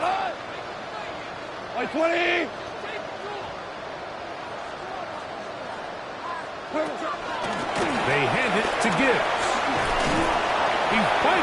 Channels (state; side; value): identical; both; correlation 1.00